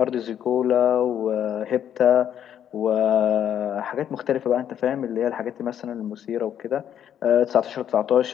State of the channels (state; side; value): quieter; right; 9.7 dB